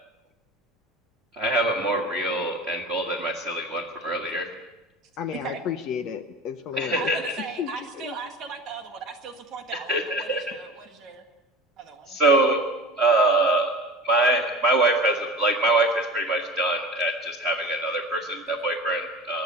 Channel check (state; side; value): normal; both; correlation 0.36